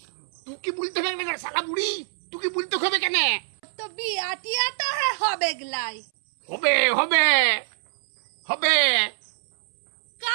তুই কি বলতে হবে না শালা বুড়ি? তুই কি বলতে হবে কেনে? তো বিয়ে টিয়া তো হবে গলাই। হবে হবে হবে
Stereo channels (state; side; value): silent; left; 62 dB below the other